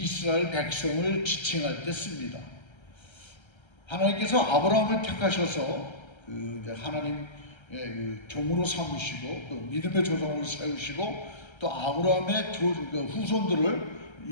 백성을 지칭할 때 씁니다. 하나님께서 아브라함을 택하셔서 하나님의 종으로 삼으시고 또 믿음의 조상으로 세우시고 또 아브라함의 후손들을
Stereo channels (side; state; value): right; late; 1.3 ms